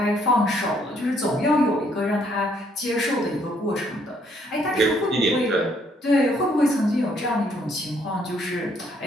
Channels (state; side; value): normal; both; correlation 0.68